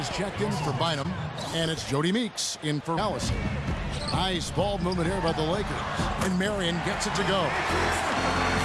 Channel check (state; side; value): identical; both; correlation 1.00